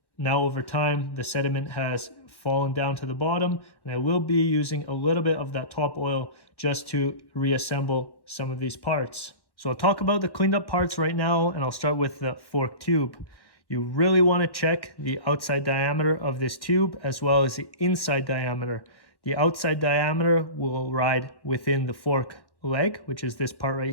Now over time, the sediment has fallen down to the bottom, and I will be using a little bit of that top oil just to reassemble some of these parts. So I'll talk about the cleaned up parts right now, and I'll start with the fork tube. You really want to check the outside diameter of this tube as well as the inside diameter. The outside diameter will ride within the fork leg, which is this part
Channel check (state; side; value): late; right; 1.1 ms